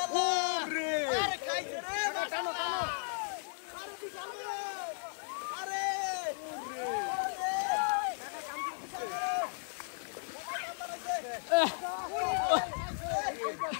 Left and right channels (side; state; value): right; silent; digital silence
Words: ওরে আরে খাইছে রে টানো টানো আরে বিশাল বড় আরে ওরে কাকা কাম করতেছে কাকা কাম বানাইছে